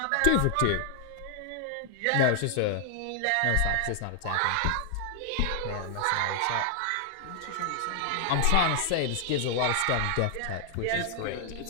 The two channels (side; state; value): both; different; correlation -0.01